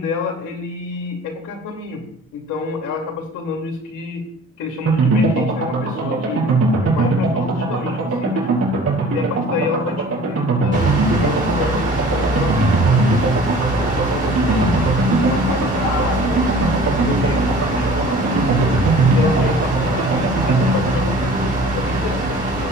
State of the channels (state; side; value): normal; both; correlation 0.46